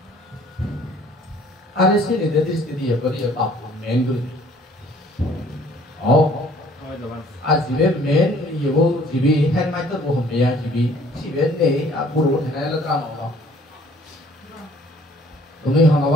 ada sini dari sini apa dia apa main dulu azibe main ibu jibi hand mic tu bukan dia jibi jibi ni buruk ni lah drama orang tu ni orang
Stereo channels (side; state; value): both; normal; correlation 0.56